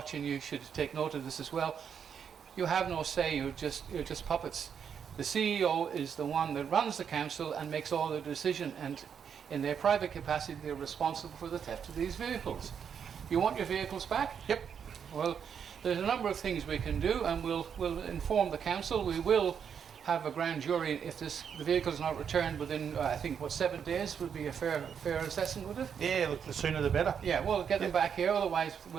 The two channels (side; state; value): left; quieter; 7.5 dB